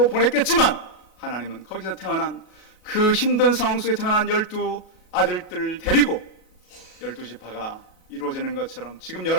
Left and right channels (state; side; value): late; right; 37 ms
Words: 보냈겠지만 하나님은 거기서 태어난 그 힘든 상황 속에 태어난 12 아들들을 데리고 12지파가 이루어지는 것처럼 지금